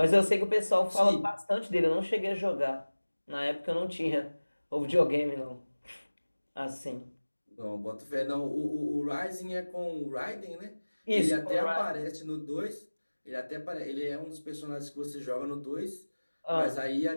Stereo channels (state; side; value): inverted; both; correlation -1.00